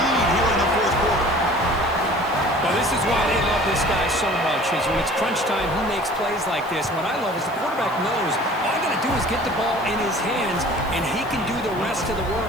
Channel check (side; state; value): right; noise; hiss, 23 dB below the sound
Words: here in the fourth quarter. Well, this is why they love this guy so much, is when it's crunch time, he makes plays like this. What I love is the quarterback knows all I got to do is get the ball in his hands, and he can do the rest of the